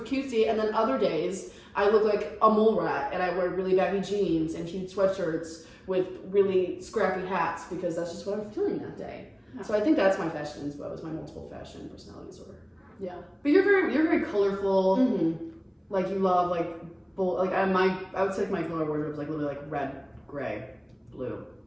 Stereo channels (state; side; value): identical; both; correlation 1.00